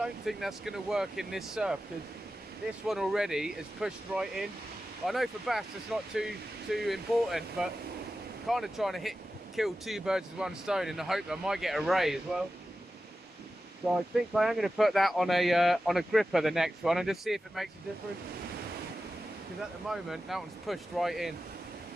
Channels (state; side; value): normal; both; correlation 0.93